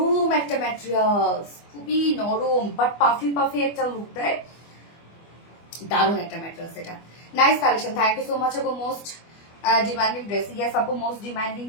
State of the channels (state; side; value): late; right; 25 ms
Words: একটা ম্যাটেরিয়ালস, খুবই নরম বাট পাফি পাফি একটা লুক দেয়, দারুণ একটা ম্যাটেরিয়ালস। এটা nice collection, thank you so much আপু। মোস্ট ডিমান্ডিং ড্রেস, ইয়েস আপু মোস্ট ডিমান্ডিং